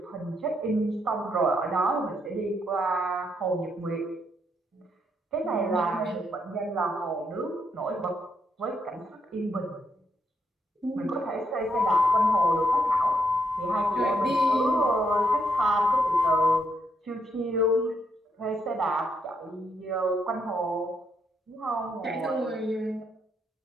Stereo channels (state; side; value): normal; both; correlation 0.76